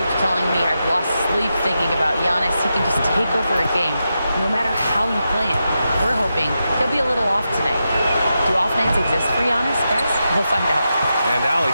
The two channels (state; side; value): inverted; both; correlation -0.88